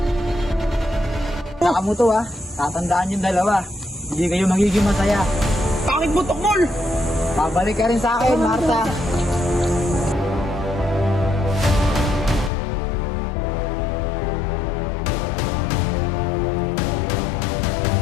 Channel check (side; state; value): right; drops out; at 12.5 s